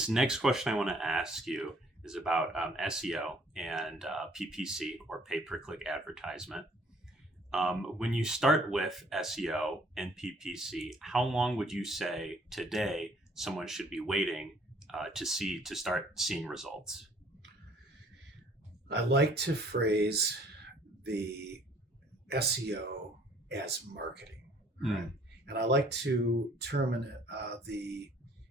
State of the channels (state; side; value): normal; both; correlation 0.59